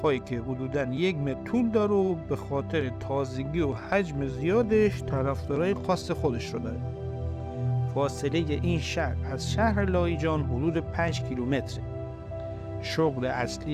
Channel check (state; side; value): identical; both; correlation 1.00